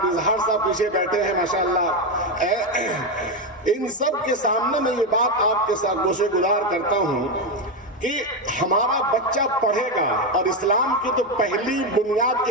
اظہار صاحب پیچھے بیٹھے ہیں ماشاءاللہ. ان سب کے سامنے میں یہ بات آپ کے ساتھ گوشے گزار کرتا ہوں کہ ہمارا بچہ پڑھے گا اور اسلام کی تو پہلی بنیاد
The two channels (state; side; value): normal; both; correlation 0.10